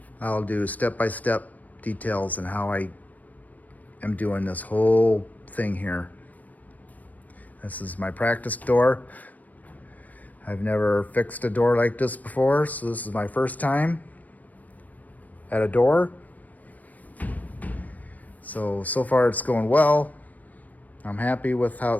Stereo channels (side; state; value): right; late; 0.077 ms